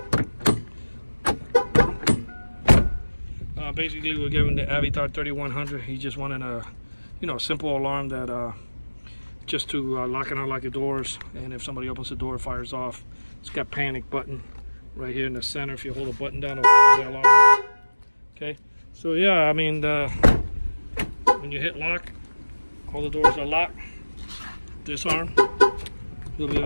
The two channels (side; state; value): both; inverted; correlation -1.00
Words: Basically, we're giving the Avitar 3100. He just wanted a, simple alarm that just to lock and unlock the doors, and if somebody opens the door, it fires off. It's got panic button right here in the center. If you hold the button down, it'll fire the alarm. Okay, so yeah, I mean, when you hit lock, all the doors are locked. Disarm. You'll be